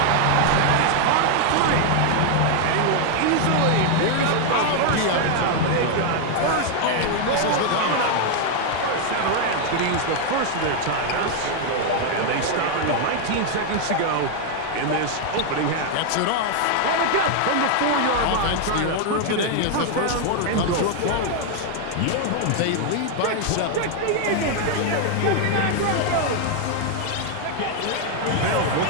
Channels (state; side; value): different; both; correlation 0.00